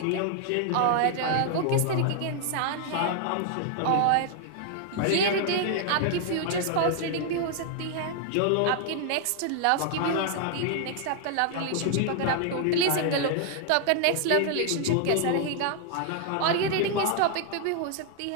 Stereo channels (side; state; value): both; different; correlation 0.00